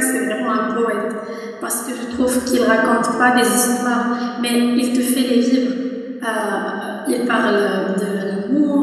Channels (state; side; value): identical; both; correlation 1.00